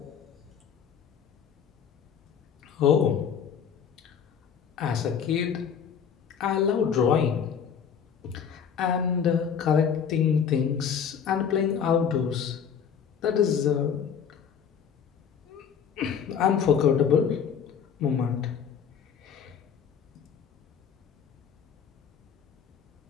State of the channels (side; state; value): right; quieter; 7.5 dB